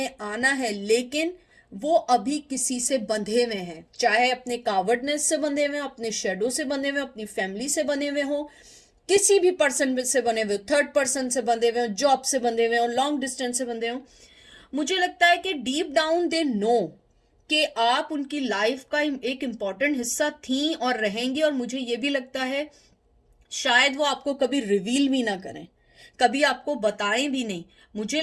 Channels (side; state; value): both; identical; correlation 1.00